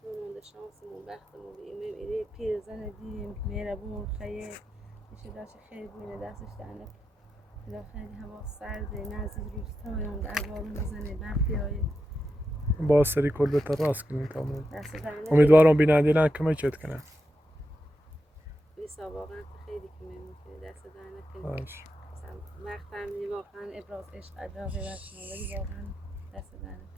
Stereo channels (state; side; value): normal; both; correlation 0.87